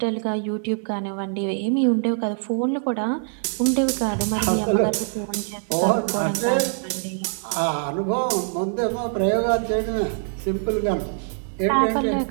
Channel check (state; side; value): silent; left; 56 dB below the other